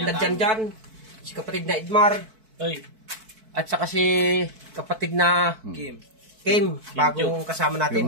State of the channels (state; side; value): late; left; 4.6 ms